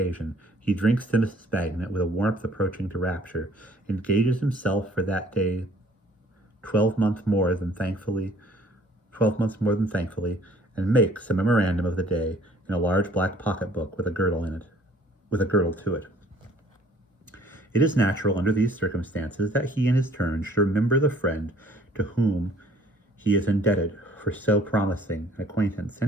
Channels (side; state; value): both; normal; correlation 0.56